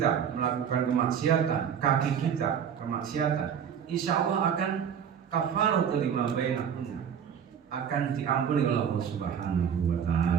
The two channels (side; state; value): left; quieter; 8.0 dB